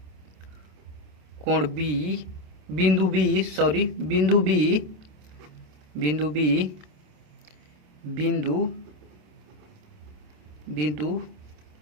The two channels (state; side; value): late; left; 27 ms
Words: कोण बी, बिंदु बी बिंदु